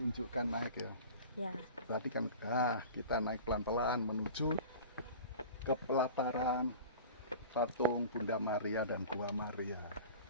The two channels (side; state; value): both; inverted; correlation -0.38